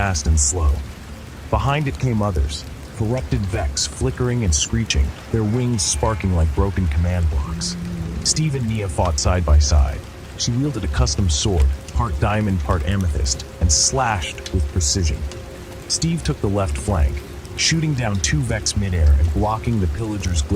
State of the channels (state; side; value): identical; both; correlation 1.00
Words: and slow. Behind it came others, corrupted Vex flickering and screeching, their wings sparking like broken command blocks. Steve and Nia fought side by side. She wielded a custom sword, part diamond, part amethyst, and slashed with precision. Steve took the left flank, shooting down 2 Vex midair and blocking the pillager's